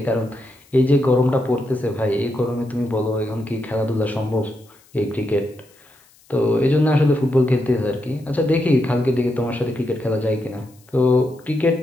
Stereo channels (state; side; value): noise; left; hiss, 30 dB below the sound